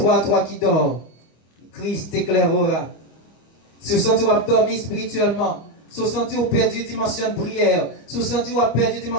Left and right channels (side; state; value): right; late; 25 ms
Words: toi qui dors. Christ t'éclairera. Si vous sentez dormir spirituellement, si vous sentez perdu dimension de prière, si vous sentez perdu